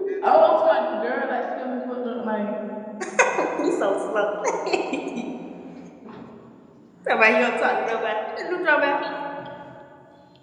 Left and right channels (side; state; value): both; identical; correlation 1.00